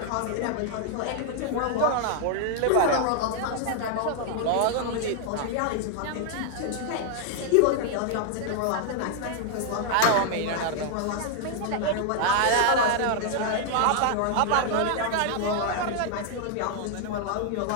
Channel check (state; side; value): different; both; correlation 0.00